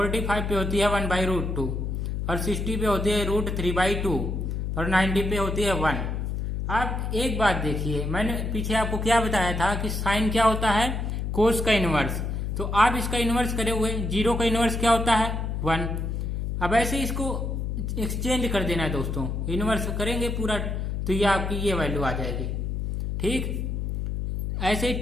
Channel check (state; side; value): noise; left; hum, 2 dB below the sound